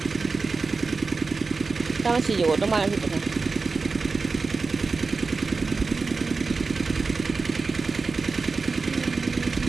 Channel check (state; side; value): quieter; left; 4.2 dB